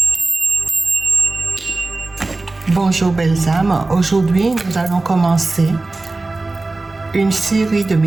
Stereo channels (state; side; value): quieter; left; 3.3 dB